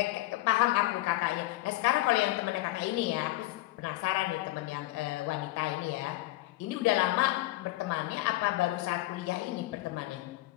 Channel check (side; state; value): right; quieter; 18.2 dB